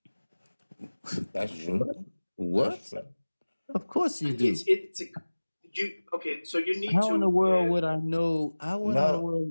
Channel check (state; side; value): inverted; both; correlation -1.00